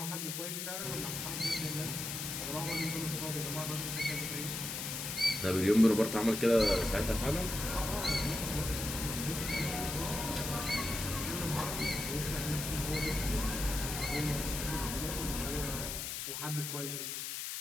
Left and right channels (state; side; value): noise; left; hiss, 4 dB below the sound